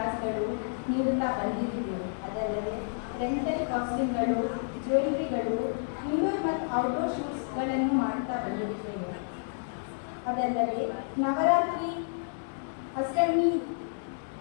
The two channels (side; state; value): right; silent; digital silence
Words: ನೀಡುತ್ತಾ ಬಂದಿದ್ದೀವಿ. ಅದಲ್ಲದೆ ರೆಂಟಲ್ ಕಾಸ್ಟಿಂಗ್ಗಳು, ಜ್ಯುವೆಲರಿಗಳು, ಇಂಡೋರ್ ಮತ್ತು ಔಟ್ಡೋರ್ ಶೂಟ್ಸ್ಗಳನ್ನು ಮಾಡುತ್ತಾ ಬಂದಿದ್ದೇವೆ. ಅದಲ್ಲದೆ ನವರಾತ್ರಿ ಅಷ್ಟಮಿ